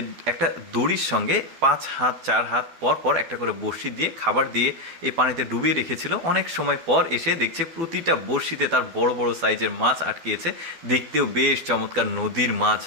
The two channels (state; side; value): late; left; 12 ms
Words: একটা দড়ির সঙ্গে 5 হাত 4 হাত পর পর একটা করে বড়শি দিয়ে খাবার দিয়ে এই পানিতে ডুবিয়ে রেখেছিল। অনেক সময় পর এসে দেখছে প্রতিটা বড়শিতে তার বড় বড় সাইজের মাছ আটকিয়েছে। দেখতেও বেশ চমৎকার, নদীর মাছ,